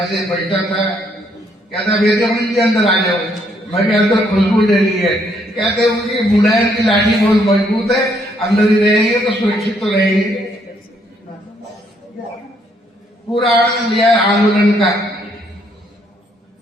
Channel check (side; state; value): both; normal; correlation 0.70